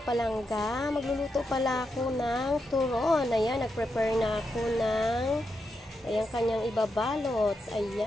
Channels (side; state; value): both; normal; correlation 0.85